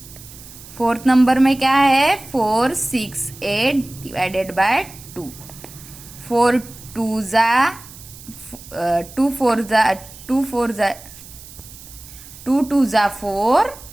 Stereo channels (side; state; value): right; noise; hiss, 18 dB below the sound